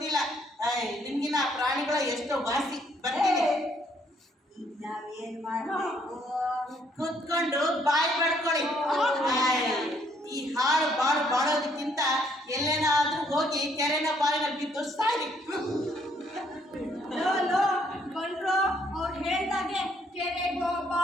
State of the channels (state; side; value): normal; both; correlation 0.68